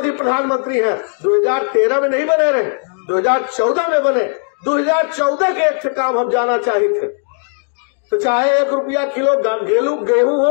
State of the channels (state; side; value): silent; right; 55 dB below the other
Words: प्रधानमंत्री हैं, 2013 में नहीं बने रहे, 2014 में बने। 2014 के एक से काम हम जाना चाहिए थे, तो चाहे ₹1 किलो गेहूं